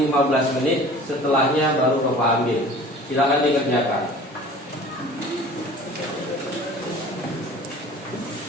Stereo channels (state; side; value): normal; both; correlation 0.44